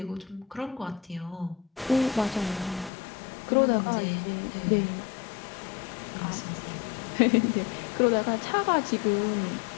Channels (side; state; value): right; drops out; at 2.9 s